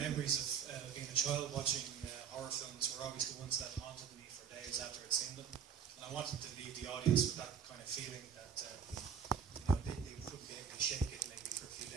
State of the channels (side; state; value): left; quieter; 7.3 dB